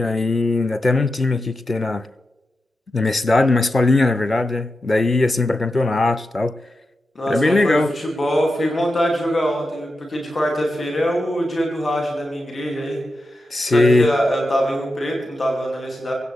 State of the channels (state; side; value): normal; both; correlation 0.89